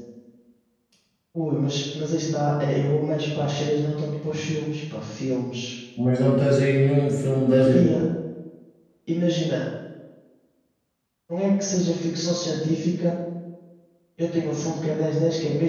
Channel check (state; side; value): identical; both; correlation 1.00